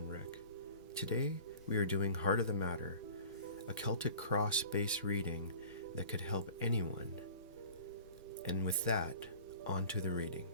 Rick. Today we are doing Heart of the Matter, a Celtic Cross based reading that could help anyone. And with that, on to the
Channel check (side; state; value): both; inverted; correlation -0.44